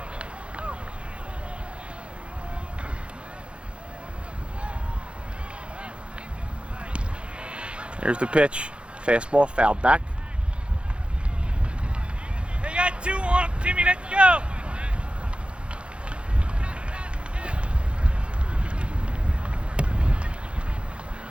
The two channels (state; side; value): late; left; 0.058 ms